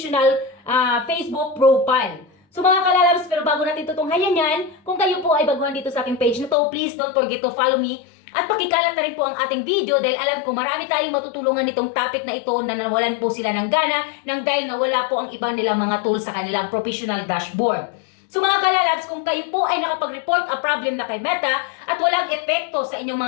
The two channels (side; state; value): right; drops out; at 6.6 s